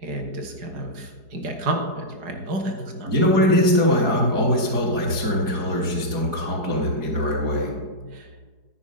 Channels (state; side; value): late; left; 4.8 ms